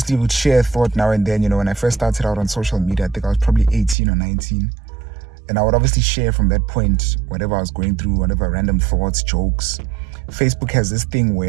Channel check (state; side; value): drops out; left; at 4.0 s